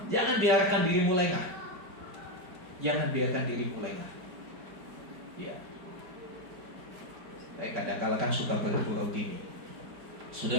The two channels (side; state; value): left; late; 4.8 ms